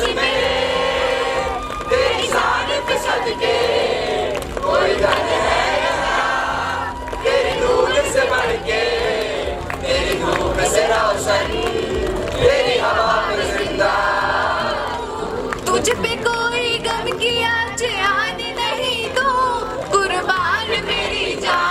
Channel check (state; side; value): identical; both; correlation 1.00